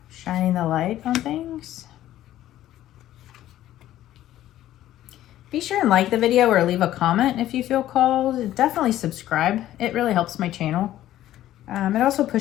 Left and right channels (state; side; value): quieter; right; 13.4 dB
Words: shining the light on things. Be sure and like the video or leave a comment if you feel called. Definitely subscribe. It really helps my channel. It also